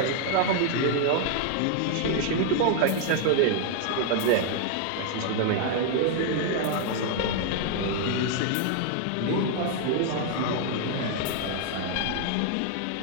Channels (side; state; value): both; different; correlation 0.00